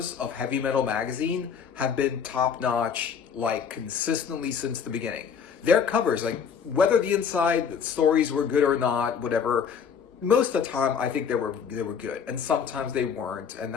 of Heavy Metal Magazine have been top-notch, like, consistently since the beginning. Their covers, like, whether the inside stories were good or not, whatever, most of the time I think they were good, and sometimes they weren't, and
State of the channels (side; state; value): right; quieter; 6.9 dB